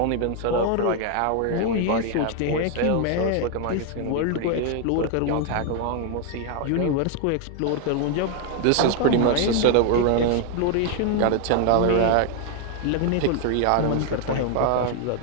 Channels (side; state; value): both; different; correlation 0.00